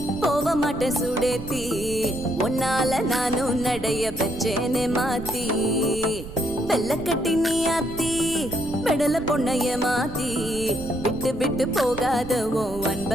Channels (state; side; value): noise; right; rumble, 11 dB below the sound